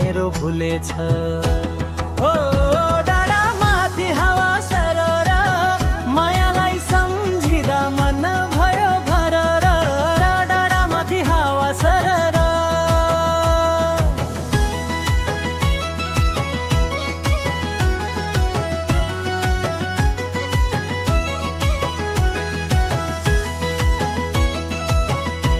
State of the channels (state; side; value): identical; both; correlation 1.00